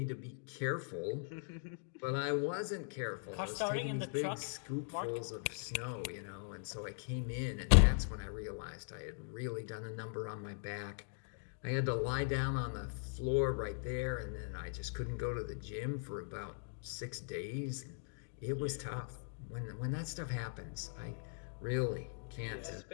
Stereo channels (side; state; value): right; silent; digital silence